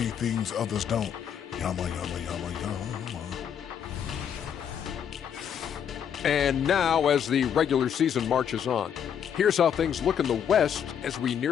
things others don't. Yama, yama, yama, yama. And now, as the regular season marches on, here's how things look in the West as we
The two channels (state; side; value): quieter; right; 8.4 dB